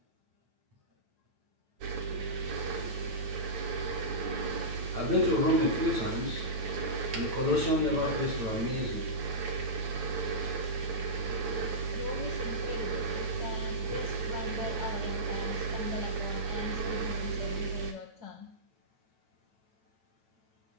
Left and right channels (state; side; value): late; left; 9.1 ms